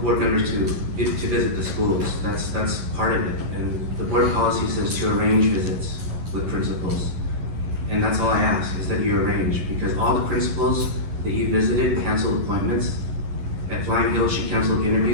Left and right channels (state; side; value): late; left; 11 ms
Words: members to visit the schools. That's part of it. And the board policy says to arrange visits with principals. And that's all I ask, is that you arrange, because all the principals that you visited canceled appointments. At Flying Hill, she canceled